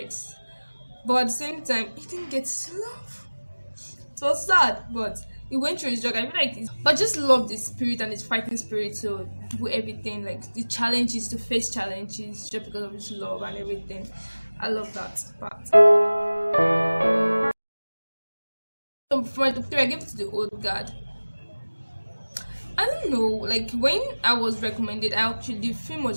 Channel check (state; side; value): inverted; both; correlation -1.00